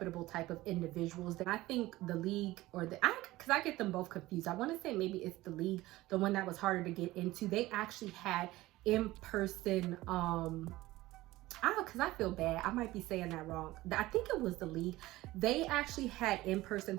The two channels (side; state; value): left; quieter; 18.0 dB